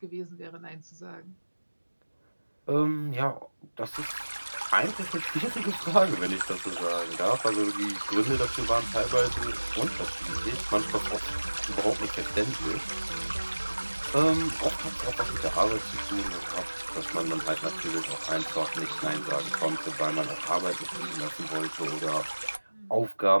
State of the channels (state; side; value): inverted; both; correlation -1.00